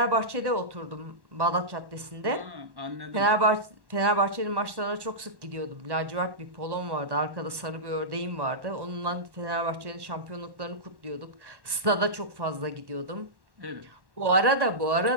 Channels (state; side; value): late; left; 1.1 ms